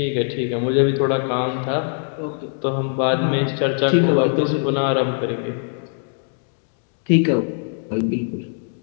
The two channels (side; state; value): right; silent; 58 dB below the other